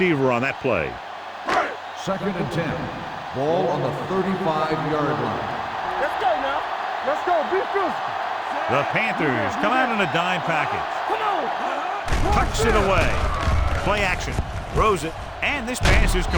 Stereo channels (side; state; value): both; identical; correlation 1.00